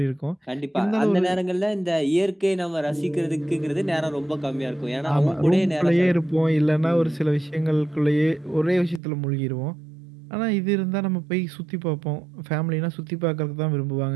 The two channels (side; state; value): left; drops out; at 9.0 s